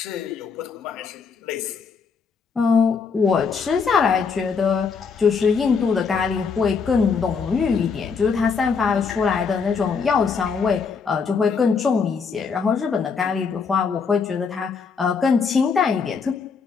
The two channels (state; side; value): quieter; right; 5.5 dB